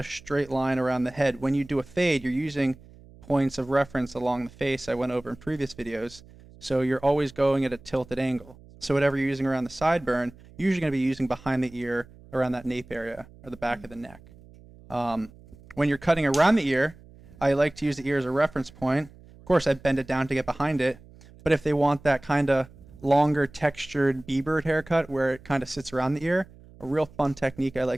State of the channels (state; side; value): noise; right; hum, 23 dB below the sound